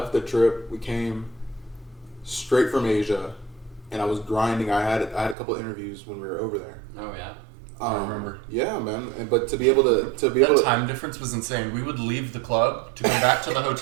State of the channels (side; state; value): left; drops out; at 5.4 s